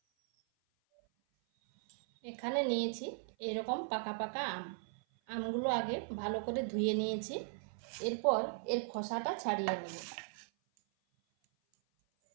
এখানে নিয়েছি এরকম পাকা পাকা আমগুলো আগে ভালো করে ধুয়ে নিয়েছি। এরপর এর খোসাটা ছাড়িয়ে নেব।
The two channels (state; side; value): silent; left; 53 dB below the other